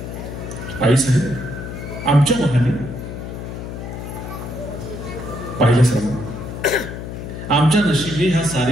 आई साहेब आमच्या महाली पाहिलं साहेब, आमच्या नशिबी हा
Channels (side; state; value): left; noise; hum, 8 dB below the sound